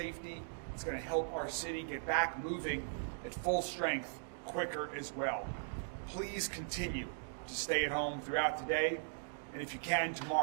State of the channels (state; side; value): silent; left; digital silence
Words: It's going to help our city get back moving at full strength quicker as well. Please continue to stay at home throughout the day, and if you can,